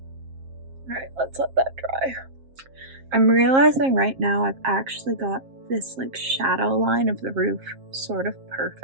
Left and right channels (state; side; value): late; left; 7.5 ms